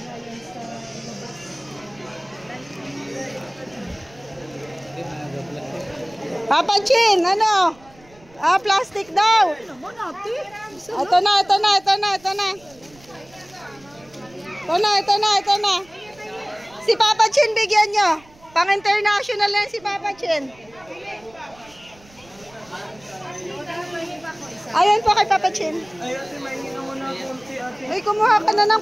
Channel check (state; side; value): noise; right; rumble, 26 dB below the sound